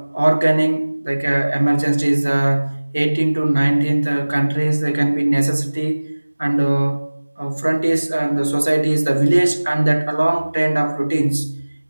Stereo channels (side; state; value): both; inverted; correlation -1.00